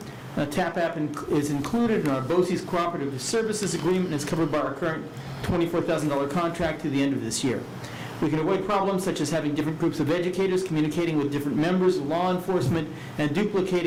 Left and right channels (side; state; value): both; identical; correlation 1.00